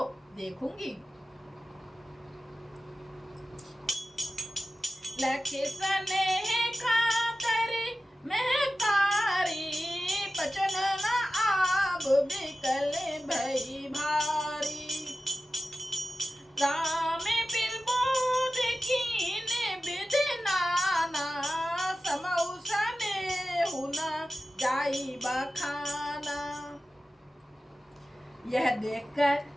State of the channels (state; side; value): normal; both; correlation 0.95